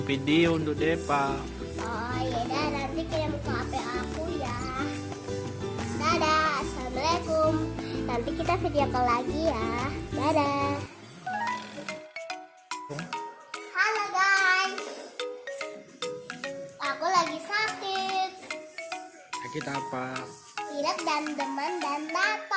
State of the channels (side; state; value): both; identical; correlation 1.00